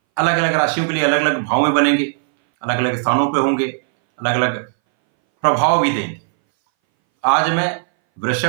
अलग अलग राशियों के लिए अलग अलग भाव में बनेंगे, अलग अलग स्थानों पे होंगे, अलग अलग प्रभाव भी देंगे। आज मैं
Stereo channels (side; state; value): left; silent; 62 dB below the other